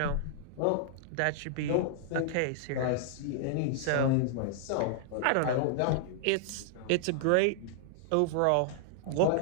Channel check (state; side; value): different; both; correlation -0.01